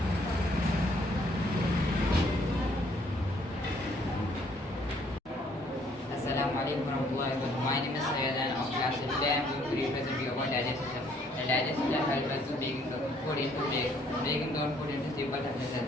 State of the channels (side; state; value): both; normal; correlation 0.64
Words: warahmatullahi wabarakatuh. My name is Syed and of class. Today I am going to represent you about digestive system. The digestive system helps us to breaking down food into simple